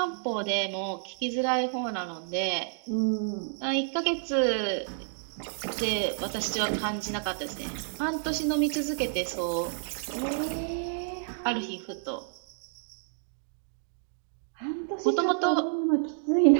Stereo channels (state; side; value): silent; left; digital silence